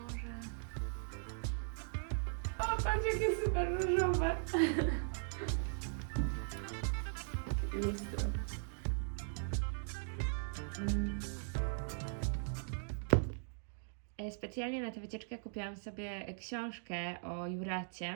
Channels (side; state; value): left; silent; digital silence